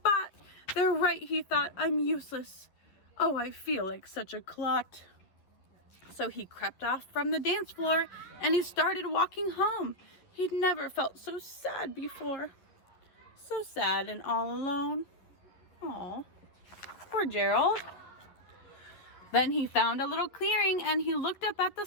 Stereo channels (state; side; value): late; right; 11 ms